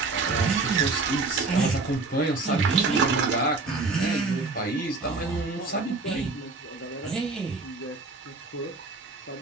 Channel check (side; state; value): left; quieter; 3.7 dB